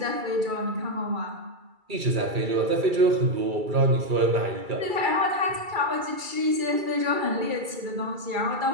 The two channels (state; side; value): late; left; 2.3 ms